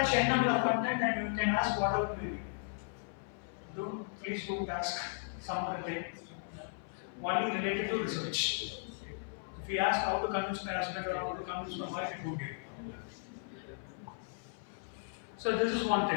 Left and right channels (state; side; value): silent; right; 54 dB below the other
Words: any number of content and you can ask whatever query. Please don't ask some other thing. Only related to research. If you ask how to convince my husband or how to convince my wife, it won't give. So this is one